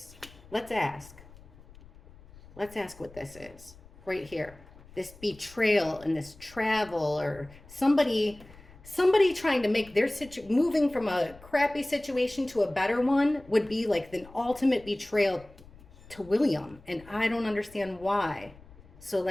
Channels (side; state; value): left; noise; rumble, 22 dB below the sound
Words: Let's ask. Let's ask what this is right here. This betrayal and this travel, or somebody trying to make their moving from a crappy situation to a better one would be like the ultimate betrayal to William. And I don't understand why. So